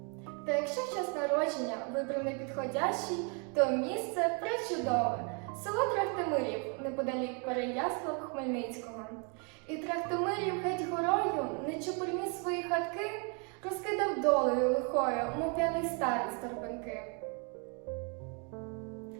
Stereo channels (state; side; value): quieter; left; 36.5 dB